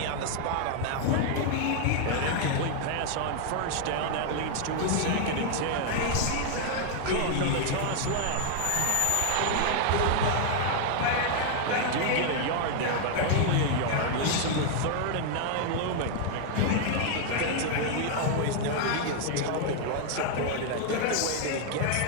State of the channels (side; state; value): both; different; correlation 0.00